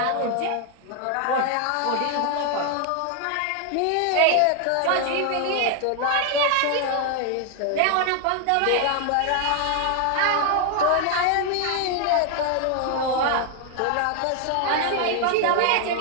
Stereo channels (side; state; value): both; different; correlation 0.00